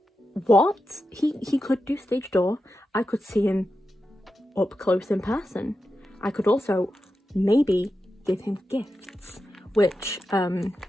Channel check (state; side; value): normal; both; correlation 0.90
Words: What? He could do stage door. I could see him up close in person. I could also maybe give him gifts, which